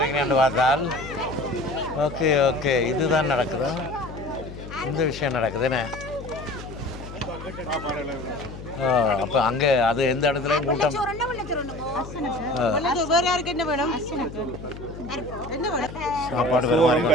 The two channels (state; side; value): noise; left; hum, 12 dB below the sound